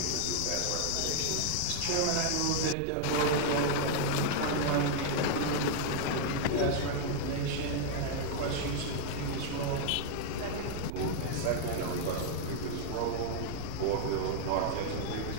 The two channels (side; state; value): both; different; correlation 0.00